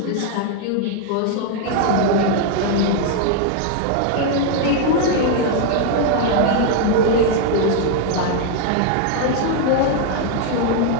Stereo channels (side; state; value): both; different; correlation 0.00